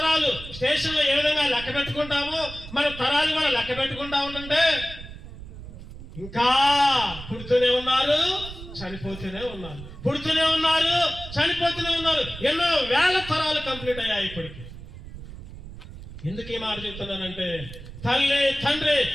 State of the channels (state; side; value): noise; right; rumble, 13 dB below the sound